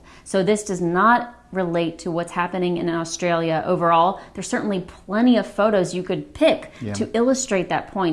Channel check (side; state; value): both; identical; correlation 1.00